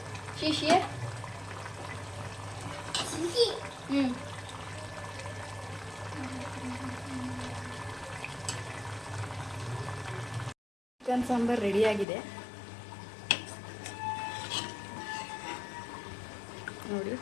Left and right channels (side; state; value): right; drops out; at 12.1 s